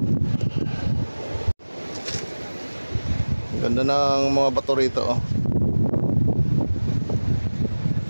Ganda ng mga bato rito, oh.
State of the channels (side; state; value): both; inverted; correlation -1.00